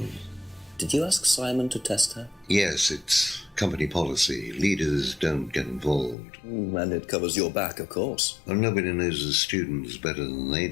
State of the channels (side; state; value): right; drops out; at 6.2 s